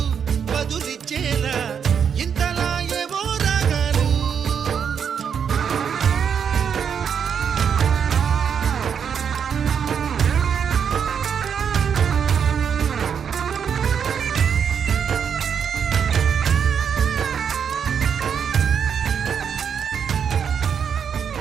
బదులిచ్చేలా ఇంతలా ఏవో రాగాలు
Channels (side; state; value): left; quieter; 7.4 dB